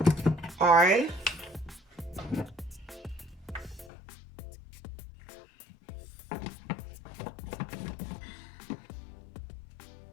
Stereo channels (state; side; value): drops out; right; at 3.9 s